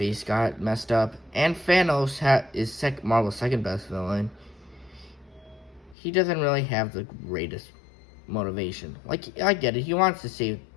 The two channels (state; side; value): drops out; right; at 6.0 s